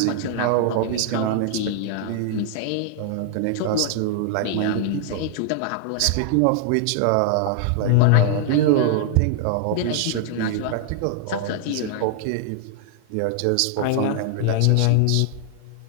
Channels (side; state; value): both; different; correlation 0.00